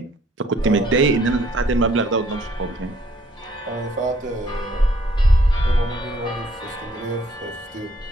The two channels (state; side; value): normal; both; correlation 0.64